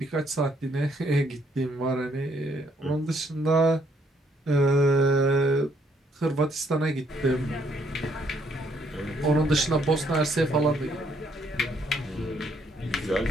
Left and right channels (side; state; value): both; normal; correlation 0.70